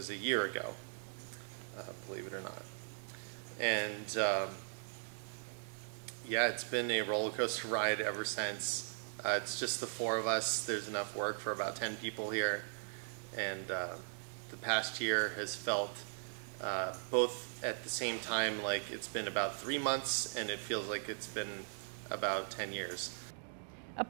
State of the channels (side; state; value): left; silent; digital silence